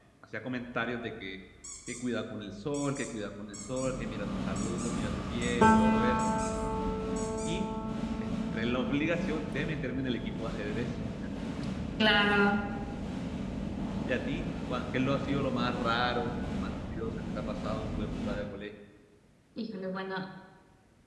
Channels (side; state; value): both; identical; correlation 1.00